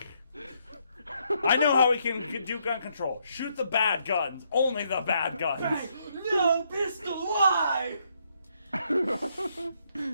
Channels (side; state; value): both; inverted; correlation -0.74